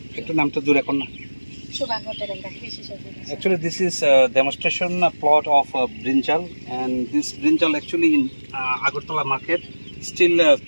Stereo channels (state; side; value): inverted; both; correlation -1.00